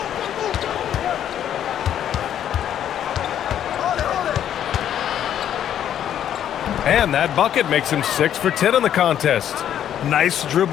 And that bucket makes him 6 for 10 in the contest. Nice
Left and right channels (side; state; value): right; quieter; 10.2 dB